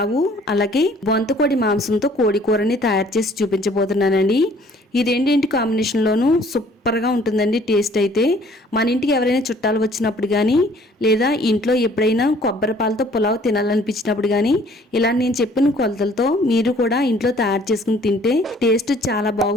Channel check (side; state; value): both; normal; correlation 0.57